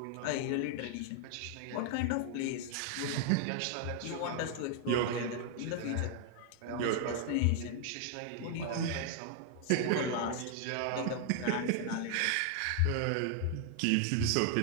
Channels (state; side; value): different; both; correlation 0.00